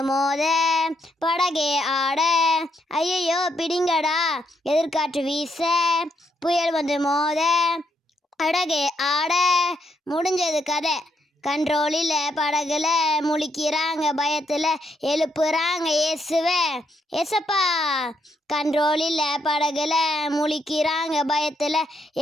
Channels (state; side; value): normal; both; correlation 0.77